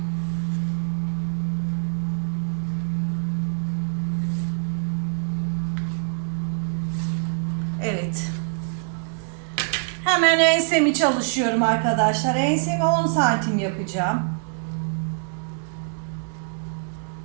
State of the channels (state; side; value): silent; left; 62 dB below the other